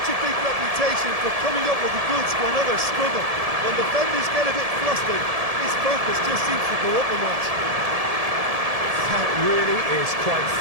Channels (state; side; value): late; left; 1.7 ms